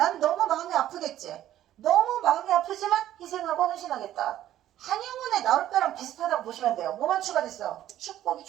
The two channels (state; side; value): quieter; left; 12.6 dB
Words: 너무 마음이 아프겠지. 너무 마음이 아프지만 희생하고 헌신하겠다. 한영훈의 나올배랑 비슷하다고 보시면 돼요. 뭐만 추가됐어? 축복이